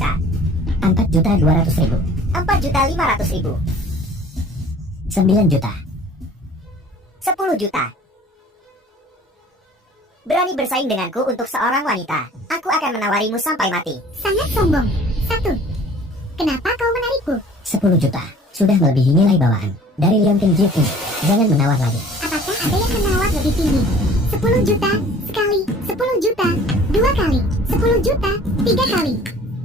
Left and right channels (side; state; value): both; normal; correlation 0.50